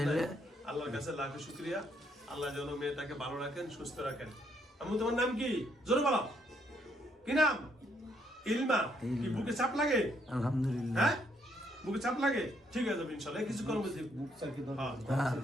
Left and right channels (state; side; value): normal; both; correlation 0.72